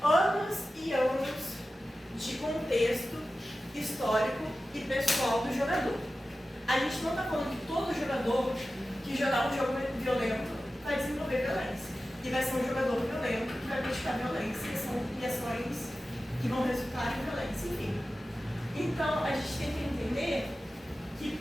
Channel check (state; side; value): normal; both; correlation 0.94